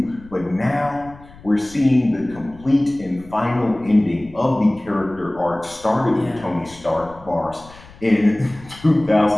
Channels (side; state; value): left; noise; rumble, 21 dB below the sound